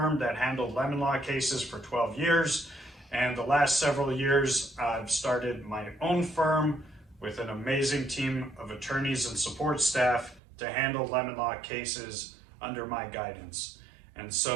that handled lemon law cases for 12 years. And the last several years, I've started my own firm with an amazing team of attorneys and support staff to handle lemon law cases under my guidance. And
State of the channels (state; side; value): drops out; left; at 10.4 s